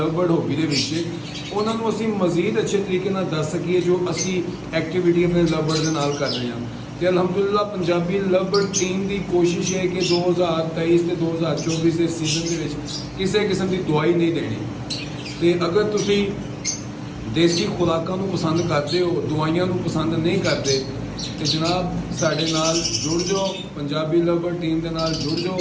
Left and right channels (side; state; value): both; identical; correlation 1.00